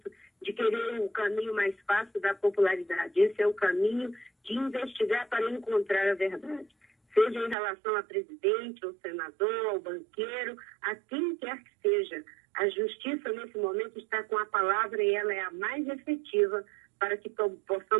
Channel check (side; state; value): left; drops out; at 7.6 s